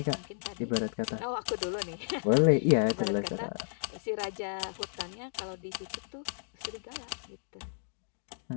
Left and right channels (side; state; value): right; silent; digital silence